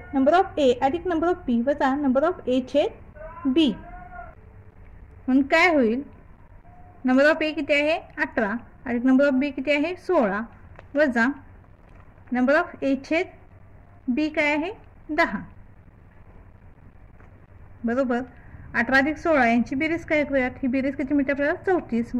नंबर ऑफ ए अधिक नंबर ऑफ बी वजा नंबर ऑफ ए छेद बी. म्हणून काय होईल नंबर ऑफ ए किती आहे 18 अधिक नंबर ऑफ बी किती आहे 16 वजा नंबर ऑफ ए छेद बी काय आहे 10 बरोबर. 18 अधिक 16 यांची बेरीज काय करूयात. ही बेरीज किती मिळते आपल्याला 34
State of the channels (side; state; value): both; identical; correlation 1.00